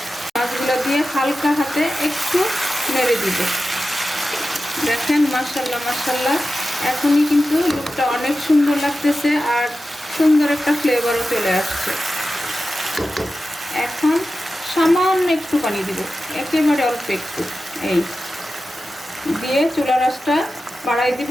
মাছগুলো দিয়ে হালকা হাতে একটু নেড়ে দিব। দেখেন মাশাআল্লাহ মাশাআল্লাহ, এখনই কিন্তু লুকটা অনেক সুন্দর লাগতেছে আর সুন্দর একটা ফ্লেভারও চলে আসছে। এখন সামান্য একটু পানি দিব, একেবারে অল্প একটু। এই দিয়ে চুলার আঁচটা বাড়াই দিব।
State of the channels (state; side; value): normal; both; correlation 0.93